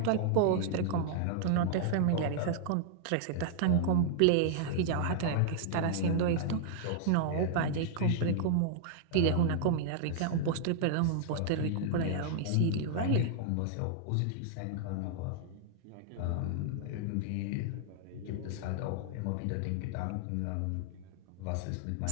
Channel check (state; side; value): different; both; correlation -0.01